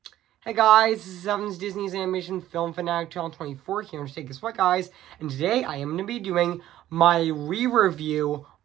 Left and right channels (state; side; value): quieter; left; 13.3 dB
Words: Hey guys, this is Evan's Disney's Animation Film Fanatic 2024 here to take us what, guys. And today I am going to be doing my re-review